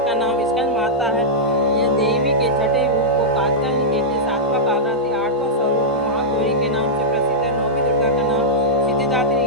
का नाम स्कंद माता है, यह देवी के छठे रूप को कात्यायनी कहते हैं, सातवां कालरात्रि, आठवां स्वरूप महागौरी के नाम से प्रसिद्ध है, नौवीं दुर्गा का नाम सिद्धिदात्री।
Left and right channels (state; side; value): normal; both; correlation -0.09